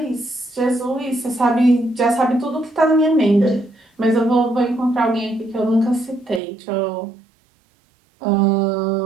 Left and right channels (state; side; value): drops out; left; at 6.4 s